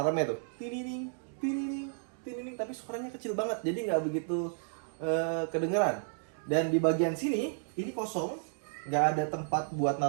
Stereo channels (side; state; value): left; silent; digital silence